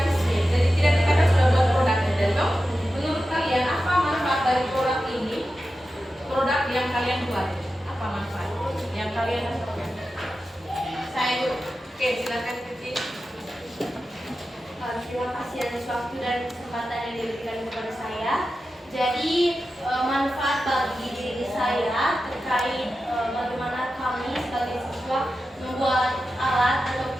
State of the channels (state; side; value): normal; both; correlation 0.92